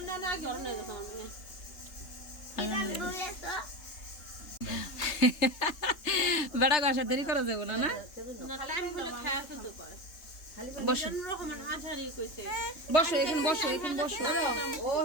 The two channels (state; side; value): late; right; 3.3 ms